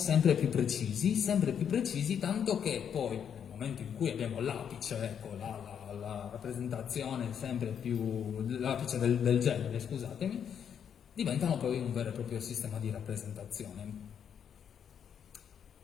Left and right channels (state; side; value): quieter; right; 8.1 dB